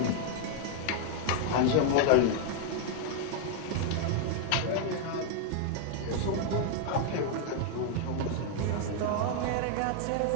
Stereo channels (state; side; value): different; both; correlation 0.00